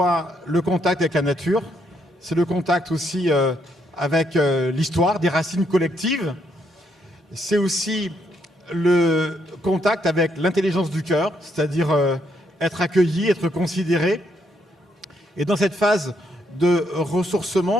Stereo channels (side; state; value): both; normal; correlation 0.75